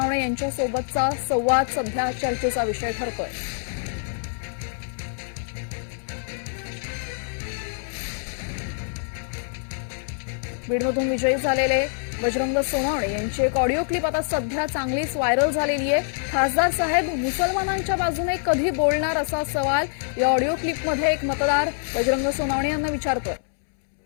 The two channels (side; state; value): right; silent; 62 dB below the other